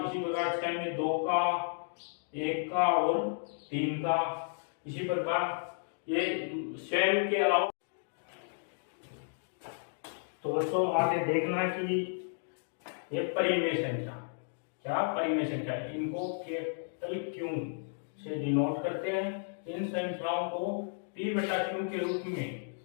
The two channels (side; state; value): right; silent; digital silence